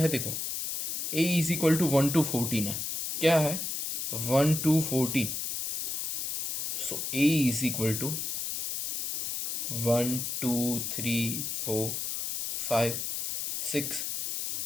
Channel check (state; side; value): noise; left; hiss, 3 dB below the sound